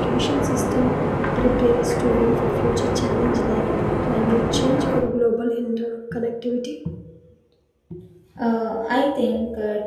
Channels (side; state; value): both; identical; correlation 1.00